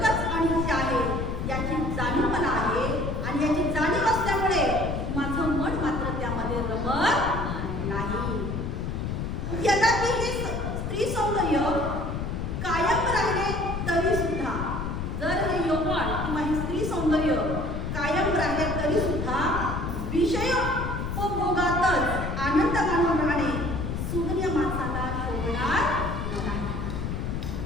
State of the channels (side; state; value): left; noise; rumble, 3 dB below the sound